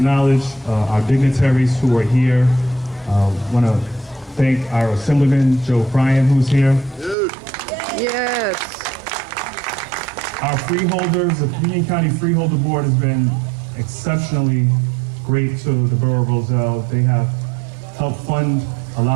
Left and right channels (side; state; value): left; drops out; at 7.2 s